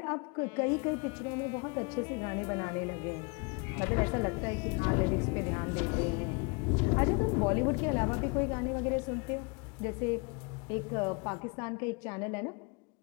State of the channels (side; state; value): right; quieter; 31.6 dB